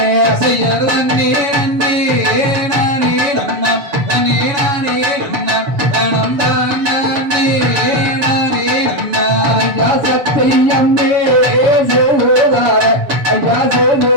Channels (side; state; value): left; late; 7.1 ms